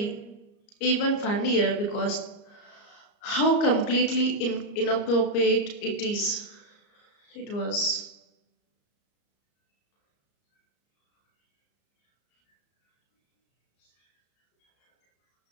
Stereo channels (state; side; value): late; right; 34 ms